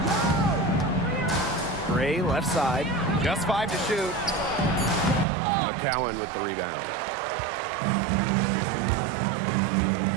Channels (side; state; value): left; drops out; at 5.2 s